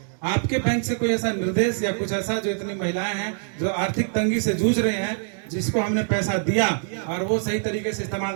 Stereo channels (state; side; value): silent; left; digital silence